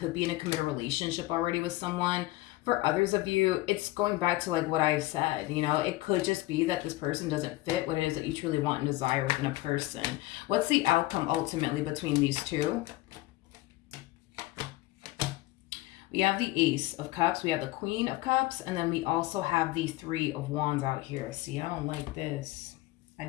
be in a committed relationship already with someone. For others of you, it's going back to like what I said. It could just be that this person doesn't fit what it is that you truly want and desire within a person. What's the outcome ultimately between these two? We have the Ace of Cups, we have the Queen of Cups, and then we also have the Three of Wands out here. See, I don't like this. I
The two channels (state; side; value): quieter; right; 18.6 dB